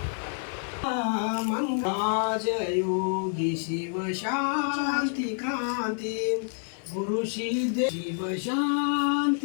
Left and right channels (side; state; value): right; silent; 56 dB below the other